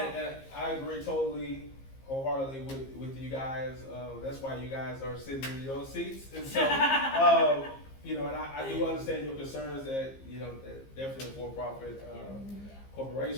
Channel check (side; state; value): right; late; 15 ms